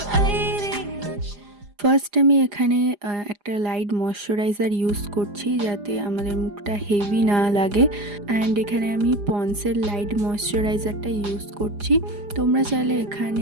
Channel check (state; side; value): late; left; 4.9 ms